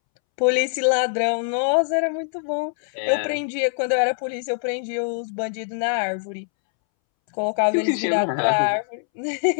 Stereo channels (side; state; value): right; silent; 63 dB below the other